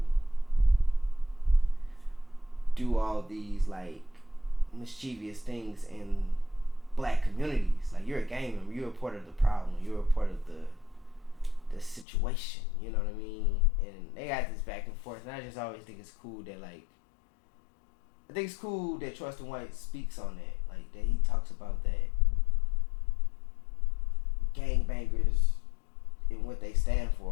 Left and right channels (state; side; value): drops out; right; at 12.1 s